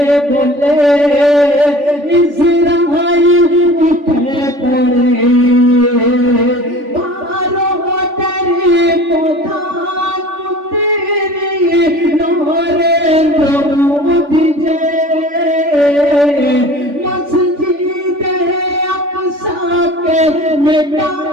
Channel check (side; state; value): left; late; 3.5 ms